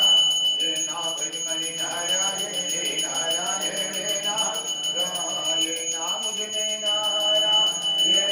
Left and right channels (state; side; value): identical; both; correlation 1.00